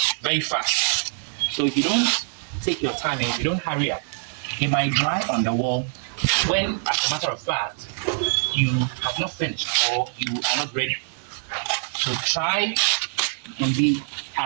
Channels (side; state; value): left; silent; digital silence